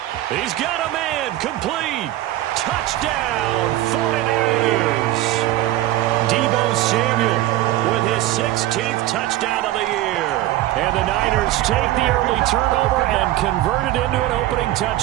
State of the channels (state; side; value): quieter; left; 15.0 dB